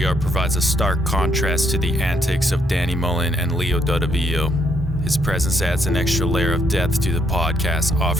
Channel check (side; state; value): both; normal; correlation 0.73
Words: provides a stark contrast to the antics of Danny Mullen and Leo Dadavio. His presence adds an extra layer of depth to the podcast,